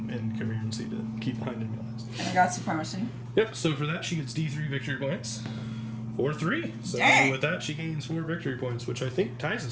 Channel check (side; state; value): both; identical; correlation 1.00